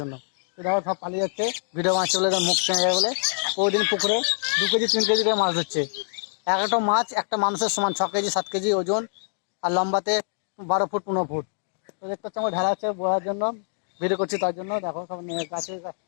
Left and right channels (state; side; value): silent; right; digital silence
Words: জন্য। তো দেখো সব পালিয়ে যাচ্ছে, ভিডিও মাছ চলে মুখ চেনে যায় বলে। প্রতিদিন পুকুরে 2 কেজি 3 কেজি করে মাছ ধরছে। এক একটা মাছ একটা মানুষের সমান, 6 কেজি 7 কেজি ওজন, আর লম্বাতে 12 ফুট 15 ফুট। তো দেখতে হচ্ছে আমার ঢালা আছে বলার জন্য, ভিডিও করছি তার জন্য। দেখো সব গাছে